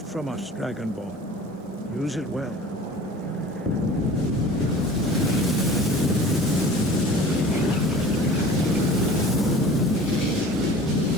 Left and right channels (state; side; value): normal; both; correlation 0.42